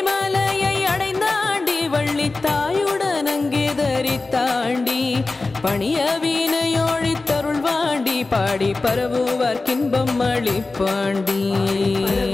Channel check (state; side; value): quieter; right; 3.5 dB